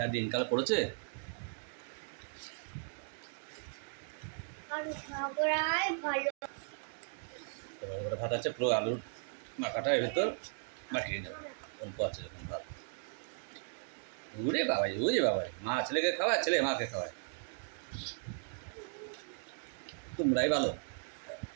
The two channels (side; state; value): left; silent; 53 dB below the other